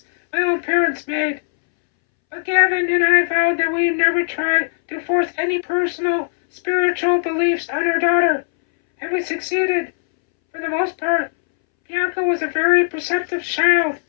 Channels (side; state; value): right; silent; 65 dB below the other